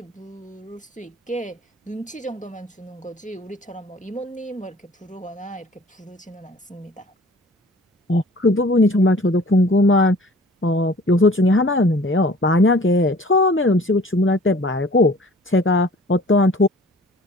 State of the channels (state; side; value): normal; both; correlation 0.49